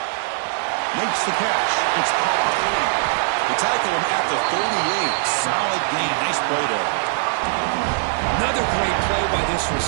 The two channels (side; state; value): left; silent; digital silence